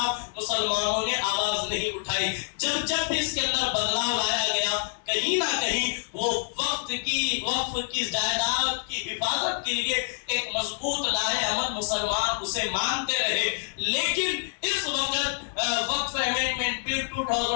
مسلمانوں نے آواز نہیں اٹھائی۔ جب بھی اس کے اندر بدلاؤ لایا گیا، کہیں نہ کہیں وہ وقف کی جائیداد کی حفاظت کے لیے ایک مضبوط لائحہ عمل مسلمان اسے مانتے رہے۔ لیکن اس وقت وقف امینڈمنٹ بل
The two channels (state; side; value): silent; right; digital silence